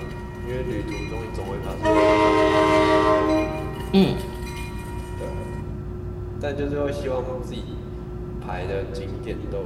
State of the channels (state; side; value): identical; both; correlation 1.00